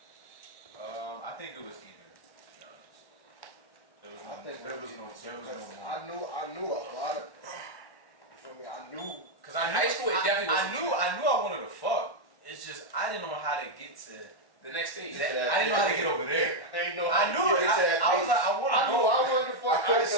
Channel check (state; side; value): late; right; 1.1 ms